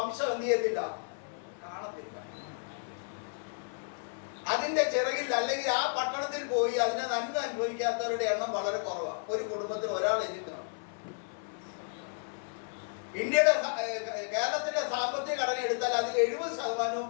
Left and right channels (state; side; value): silent; right; 56 dB below the other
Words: എന്ത് ചെയ്യത്തില്ല, കാണത്തില്ല. അതിന്റെ ചിറകിൽ അല്ലെങ്കിൽ ആ പട്ടണത്തിൽ പോയി അതിനെ നന്മ അനുഭവിക്കാത്തവരുടെ എണ്ണം വളരെ കുറവാണ്. ഒരു കുടുംബത്തിൽ ഒരാൾ എഴുതിക്കണം. കേരളത്തിന്റെ സാമ്പത്തിക ഘടന എടുത്താൽ അതിൽ 70%